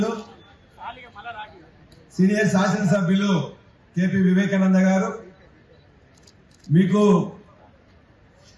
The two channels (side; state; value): both; identical; correlation 1.00